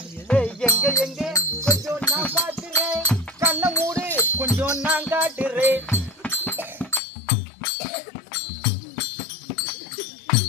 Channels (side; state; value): right; drops out; at 7.0 s